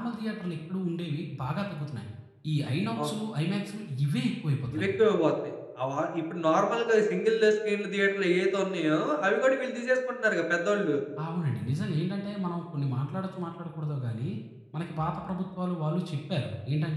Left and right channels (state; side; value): identical; both; correlation 1.00